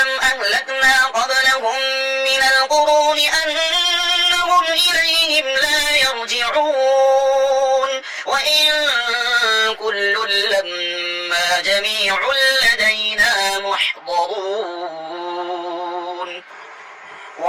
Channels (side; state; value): both; identical; correlation 1.00